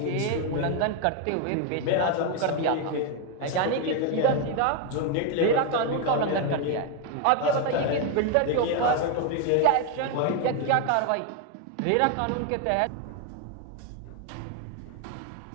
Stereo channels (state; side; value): different; both; correlation 0.01